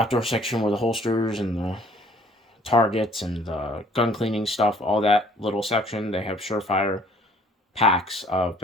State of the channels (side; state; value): both; normal; correlation 0.57